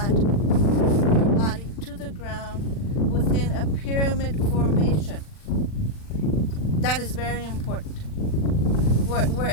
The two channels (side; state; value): right; late; 40 ms